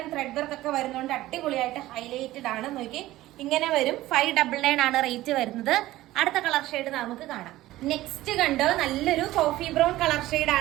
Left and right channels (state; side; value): quieter; left; 16.2 dB